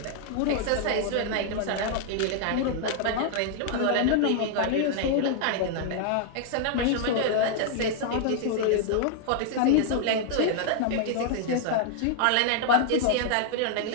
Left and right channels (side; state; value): both; different; correlation 0.00